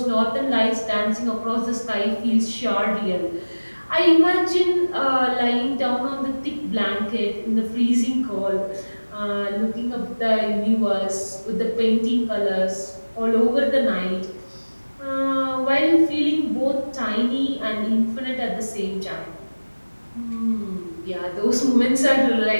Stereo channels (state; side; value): inverted; both; correlation -1.00